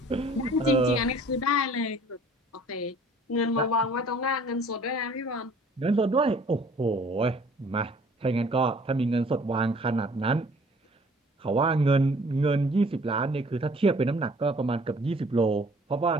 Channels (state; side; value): normal; both; correlation 0.54